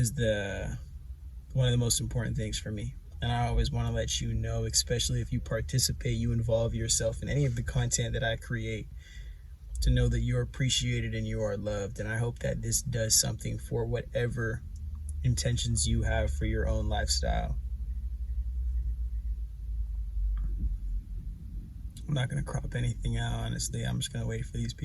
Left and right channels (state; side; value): identical; both; correlation 1.00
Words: one of the most important things for me, and I always want to let you know, especially if you participate, you involve yourself in any of the content that I create, to know that you're appreciated and you are loved. And I hope that this does something for whatever intentions you have for your own lifestyle. I'm not going to crop anything out, honestly. I'm just going to wait for these